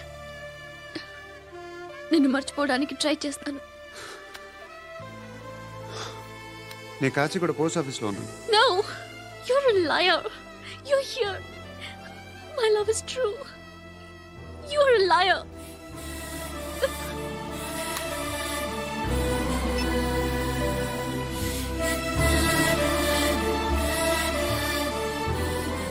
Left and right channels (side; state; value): both; identical; correlation 1.00